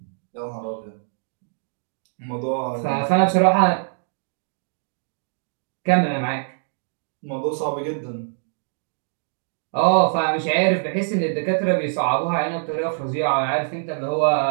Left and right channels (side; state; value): left; silent; digital silence